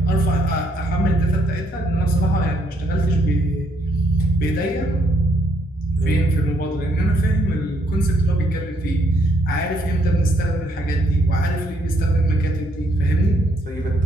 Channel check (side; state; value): both; normal; correlation 0.70